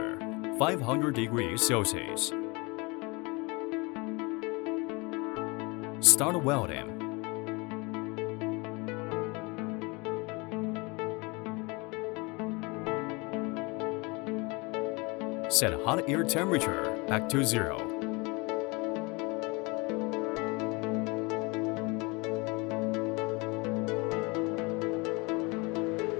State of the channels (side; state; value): right; quieter; 27.0 dB